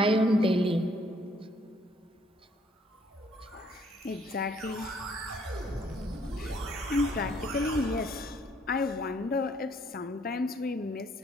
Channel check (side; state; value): both; normal; correlation 0.65